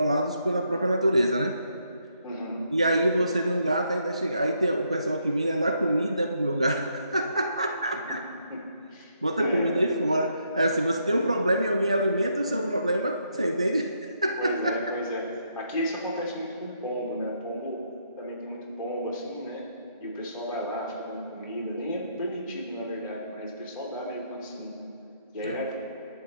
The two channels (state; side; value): inverted; both; correlation -0.75